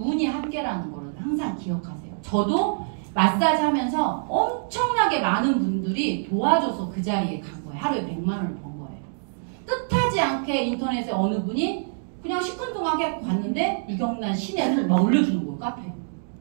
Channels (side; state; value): left; silent; digital silence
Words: 함께라는 거를 항상 기억하세요. 저도 마사지 하면서 엄청나게 많은 분들이 도와줘서 그 자리에 간 거예요. 하루에 100만 원을 번 거예요. 뜻하지 않게 인터넷에 어느 분이 그냥 시큰둥하게 갔는데 유경란 신혜를 막 올려주는 거예요. 카페에.